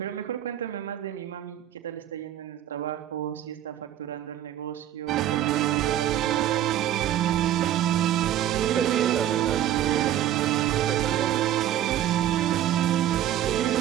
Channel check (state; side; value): quieter; left; 11.7 dB